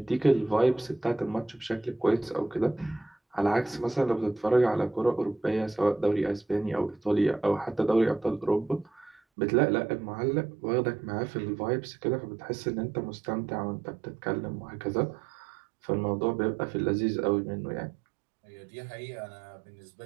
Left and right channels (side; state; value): left; drops out; at 9.2 s